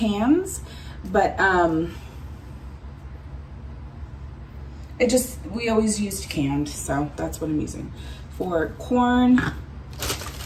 but we always used canned, so that's what I'm using for corn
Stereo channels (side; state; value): both; identical; correlation 1.00